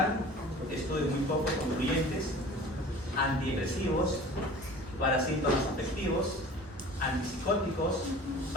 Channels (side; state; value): both; normal; correlation 0.42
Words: estudios muy poco concluyentes, antidepresivos, para síntomas afectivos, antipsicóticos,